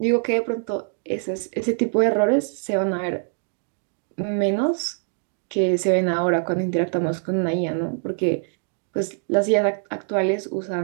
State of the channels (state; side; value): silent; left; digital silence